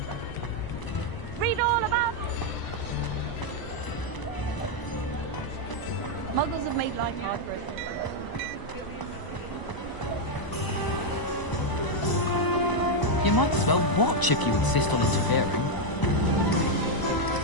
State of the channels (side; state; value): right; late; 1.0 ms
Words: Read all about Muggles have made life hard for us. You might as well watch if you insist on interfering.